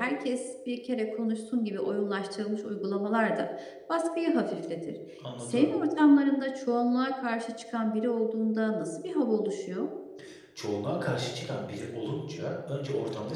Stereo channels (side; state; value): both; identical; correlation 1.00